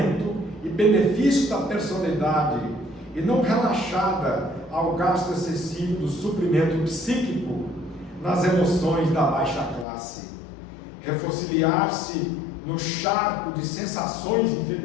e benefício da personalidade, e não relaxada ao gasto excessivo do suprimento psíquico nas emoções da baixa classe. Refossiliar-se no charco de sensações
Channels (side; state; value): right; drops out; at 9.9 s